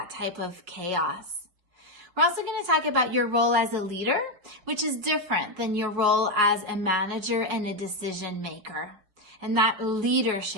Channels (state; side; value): late; left; 5.6 ms